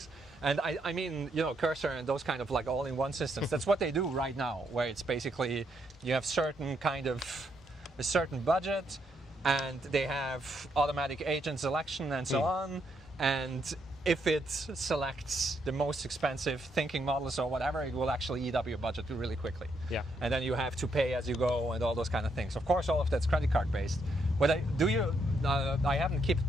And I mean, you know, Cursor and those kind of like all-in-one systems, that's what they do right now, where it's basically you have a certain budget, and they have automatic agent selection and so on, and if it selects the most expensive thinking models or whatever, it will actually eat up your budget really quickly. Yeah. And then you have to pay as you go and all those kind of things. Of course, all of that's credit card based. But I haven't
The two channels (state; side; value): normal; both; correlation 0.76